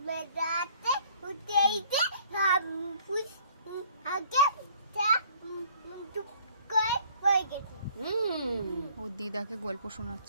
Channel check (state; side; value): inverted; both; correlation -0.57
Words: মেরাতে উঠেইতে ফুস আগে চুপ করে পড়ে গেছে। ওর দিদাকে গল্প